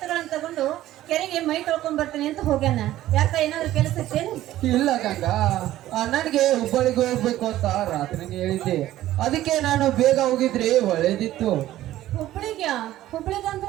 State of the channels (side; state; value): left; quieter; 14.3 dB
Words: ತಗೊಂಡು ಕೆರೆಗೆ ಮೈ ತೊಳ್ಕೊಂಡ್ ಬರ್ತೀನಿ ಅಂತ ಹೋಗ್ಯಾನ. ಯಾಕ ಏನಾದ್ರು ಕೆಲಸ ಇತ್ತೇನು? ಇಲ್ಲ ಗಂಗಾ, ಅಣ್ಣನಿಗೆ ಹುಬ್ಬಳ್ಳಿಗೆ ಹೋಗ್ಬೇಕು ಅಂತ ರಾತ್ರಿನೇ ಹೇಳಿದ್ದೆ. ಅದಕ್ಕೆ ನಾನು ಬೇಗ ಹೋಗಿದ್ರೆ ಒಳ್ಳೇದಿತ್ತು. ಹುಬ್ಳಿಗ್ಯಾ?